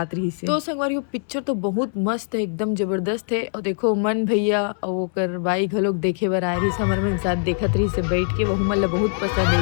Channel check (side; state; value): right; silent; digital silence